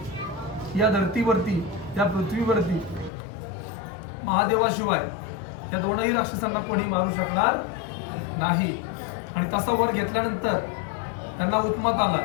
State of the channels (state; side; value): drops out; right; at 3.1 s